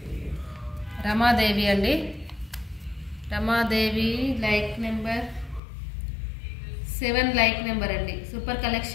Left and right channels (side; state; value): right; drops out; at 5.6 s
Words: అండి. Ramadevi like number 7 like number అండి. Super